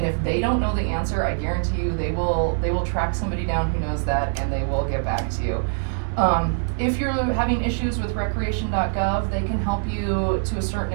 if they don't know the answer, I guarantee you they will track somebody down who knows that, and they will get back to you. If you're having issues with recreation.gov, they can help you to a certain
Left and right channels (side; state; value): left; silent; 63 dB below the other